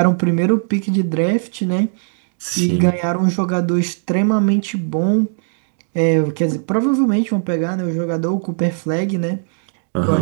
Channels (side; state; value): left; silent; digital silence